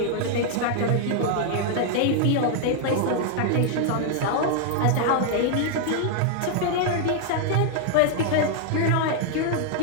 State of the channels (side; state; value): both; different; correlation 0.00